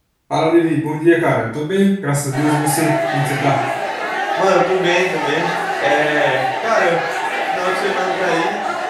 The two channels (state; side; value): identical; both; correlation 1.00